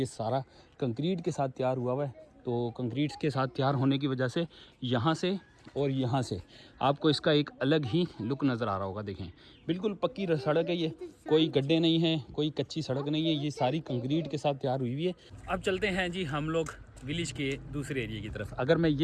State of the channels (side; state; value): both; identical; correlation 1.00